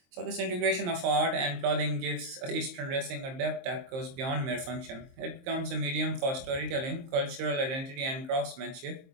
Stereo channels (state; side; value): late; left; 23 ms